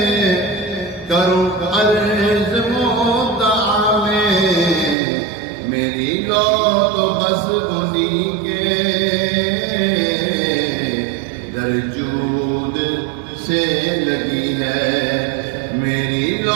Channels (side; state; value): left; drops out; at 5.0 s